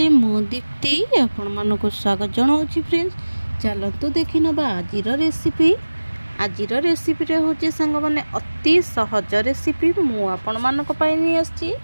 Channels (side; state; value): both; inverted; correlation -1.00